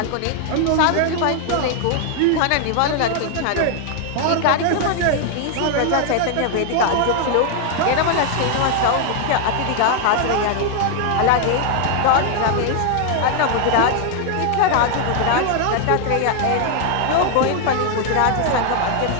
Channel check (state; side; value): different; both; correlation 0.00